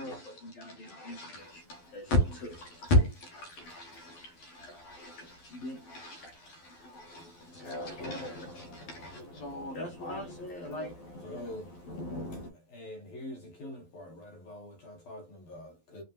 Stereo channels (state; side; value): late; right; 12 ms